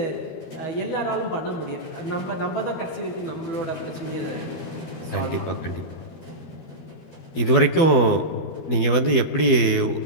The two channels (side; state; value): right; late; 12 ms